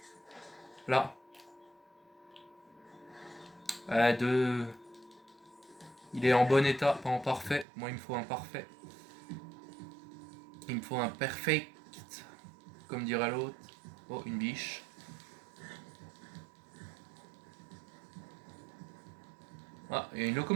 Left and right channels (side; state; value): left; drops out; at 7.7 s